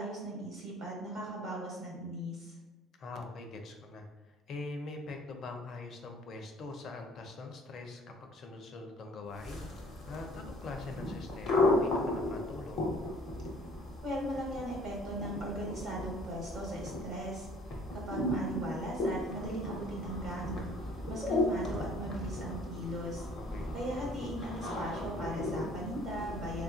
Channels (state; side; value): normal; both; correlation 0.55